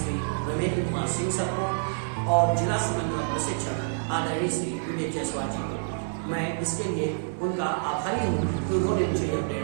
रमेंद्र कुमार सिंह सर को और जिला समन्वय प्रशिक्षक आदरणीय श्री विवेक जायसवाल जी को। मैं इसके लिए उनका आभारी हूँ कि उन्होंने मुझे यह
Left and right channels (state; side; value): silent; left; digital silence